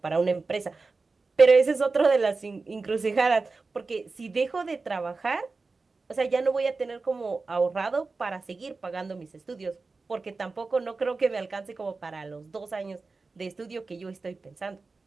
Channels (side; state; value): left; quieter; 4.0 dB